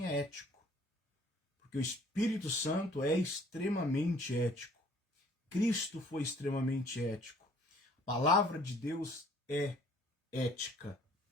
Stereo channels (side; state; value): both; normal; correlation 0.57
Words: é ético. Porque o Espírito Santo é extremamente ético. Cristo foi extremamente ético. A palavra de Deus é ética.